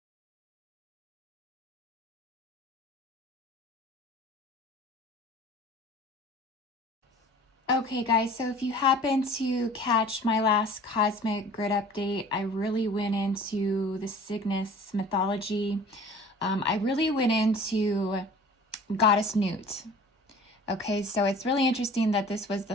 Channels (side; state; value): both; normal; correlation 0.45